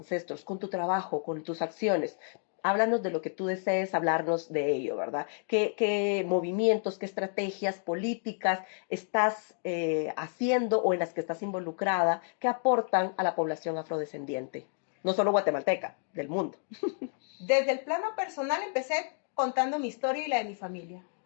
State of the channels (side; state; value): right; silent; 55 dB below the other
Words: con tu trabajo, con tus acciones? Háblanos de lo que tú desees hablarnos de ello, ¿verdad? ¿Qué movimientos, qué estrategias políticas estás haciendo o en las que estás involucrada que aportan a la población afrodescendiente? No solo guatemalteca, del mundo. Desde el plano personal empecé contando mi historia y la de mi familia,